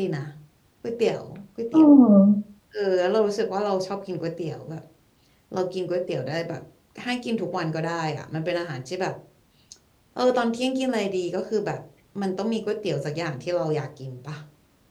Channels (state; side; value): identical; both; correlation 1.00